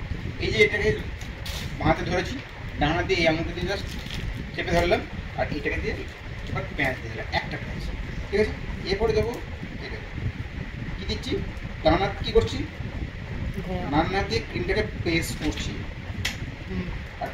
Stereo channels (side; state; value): both; identical; correlation 1.00